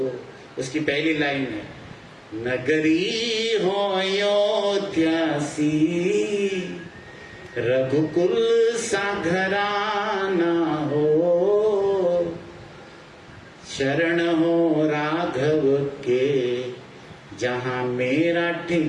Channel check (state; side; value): identical; both; correlation 1.00